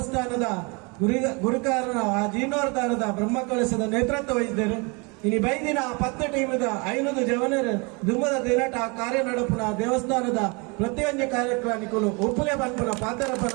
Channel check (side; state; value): left; quieter; 30.3 dB